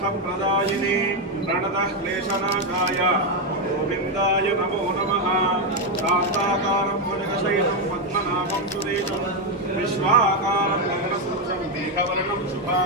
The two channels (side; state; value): both; normal; correlation 0.05